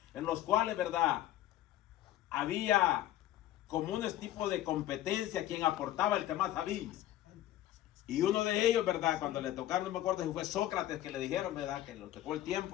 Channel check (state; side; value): quieter; right; 13.6 dB